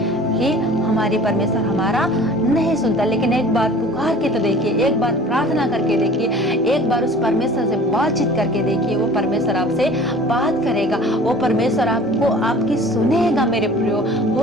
कि हमारी परमेश्वर हमारा नहीं सुनता, लेकिन एक बार पुकार के तो देखिए, एक बार प्रार्थना करके देखिए, एक बार उस परमेश्वर से बातचीत करके देखिए, वो परमेश्वर आपसे बात करेगा, वो परमेश्वर आपको आपकी सुनेगा। मेरे प्रियो,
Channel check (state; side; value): normal; both; correlation 0.45